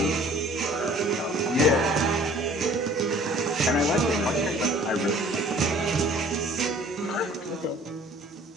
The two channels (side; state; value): both; normal; correlation 0.52